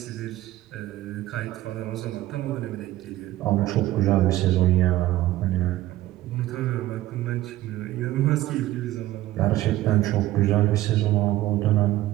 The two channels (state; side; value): quieter; left; 15.5 dB